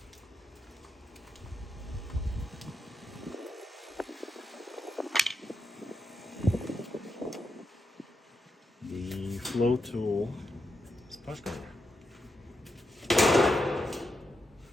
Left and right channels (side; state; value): both; normal; correlation 0.85